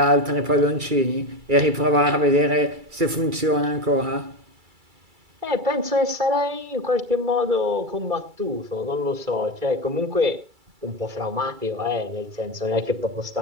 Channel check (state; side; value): late; left; 2.3 ms